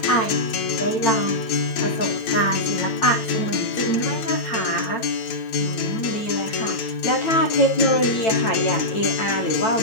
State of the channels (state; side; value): late; right; 9.0 ms